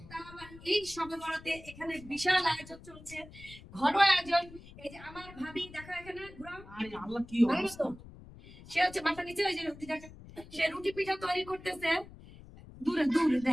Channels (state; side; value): noise; left; rumble, 18 dB below the sound